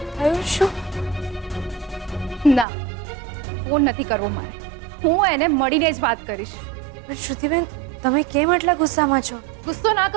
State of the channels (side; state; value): left; drops out; at 2.7 s